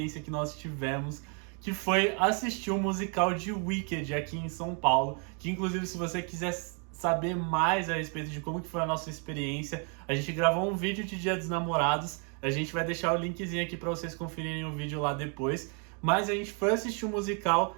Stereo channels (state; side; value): quieter; left; 38.2 dB